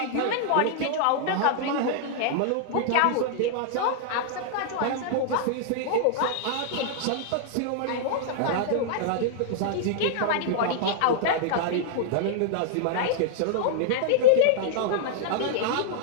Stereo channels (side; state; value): both; different; correlation -0.01